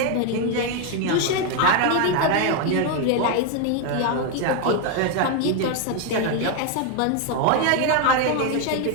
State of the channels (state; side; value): different; both; correlation 0.01